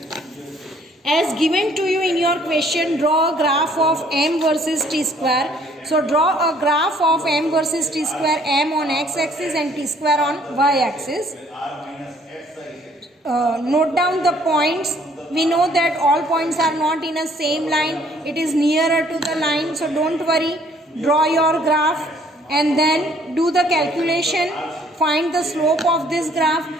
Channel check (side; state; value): both; normal; correlation 0.61